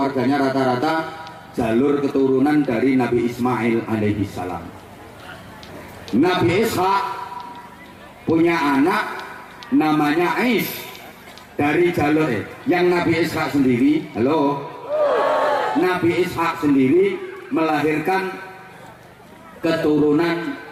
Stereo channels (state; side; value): identical; both; correlation 1.00